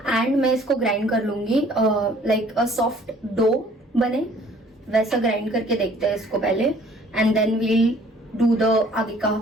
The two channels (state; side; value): normal; both; correlation 0.56